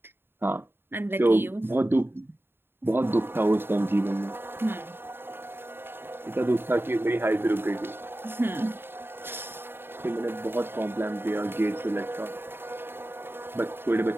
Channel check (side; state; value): left; late; 0.11 ms